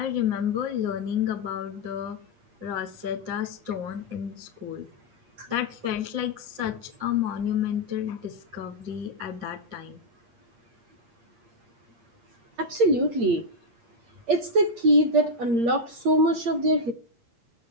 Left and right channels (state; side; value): late; left; 8.6 ms